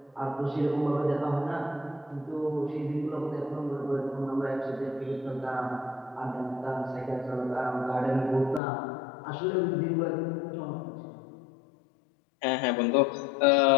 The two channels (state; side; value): drops out; right; at 8.6 s